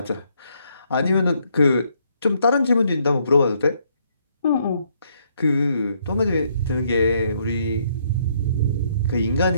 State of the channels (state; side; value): inverted; both; correlation -0.70